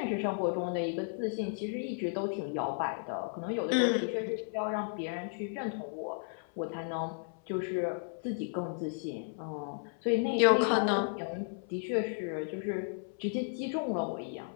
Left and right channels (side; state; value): right; silent; 55 dB below the other